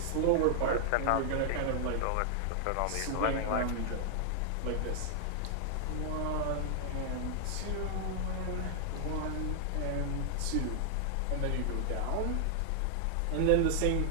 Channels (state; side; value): different; both; correlation 0.00